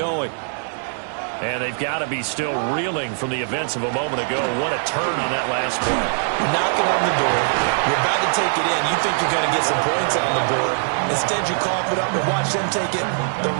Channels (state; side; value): silent; left; digital silence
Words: And they've got to be still reeling from the events of a moment ago. What a turn on that last play. Knocking on the door. You're about to take it in. You think you're going to get some points on the board. Instead, you cough it up and watch them take it the